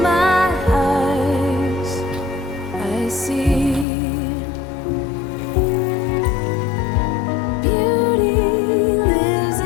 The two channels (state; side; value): drops out; right; at 3.9 s